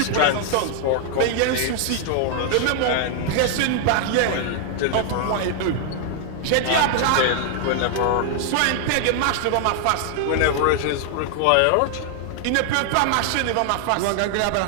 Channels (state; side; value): different; both; correlation 0.00